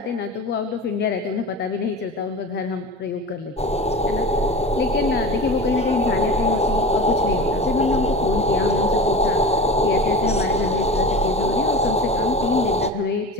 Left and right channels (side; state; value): both; normal; correlation 0.31